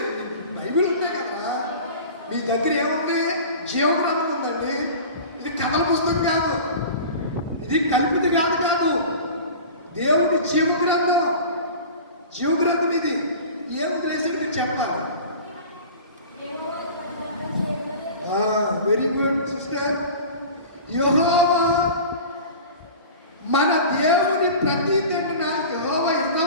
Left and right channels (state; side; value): inverted; both; correlation -0.38